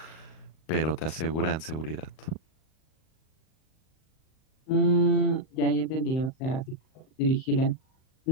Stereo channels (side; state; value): right; late; 38 ms